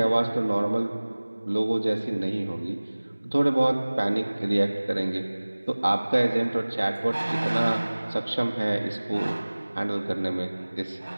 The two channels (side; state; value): both; inverted; correlation -1.00